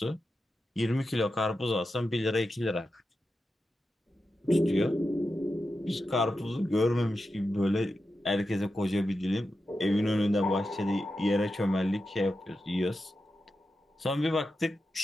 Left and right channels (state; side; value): normal; both; correlation 0.90